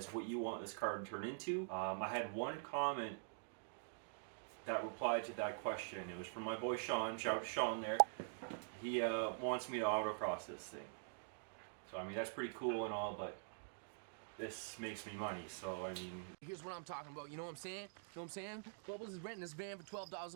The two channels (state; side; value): silent; left; digital silence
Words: what you want this car to turn into. I had one comment that replied to that question. It was from my boy Sean. Shout out to Sean there. He wants me to autocross this thing. So I mean, that's pretty cool and all, but this makes me money, so I mean... Here's what I'm talking about, you know what I'm saying? You know what I'm saying? Bubbles is renting this van for $12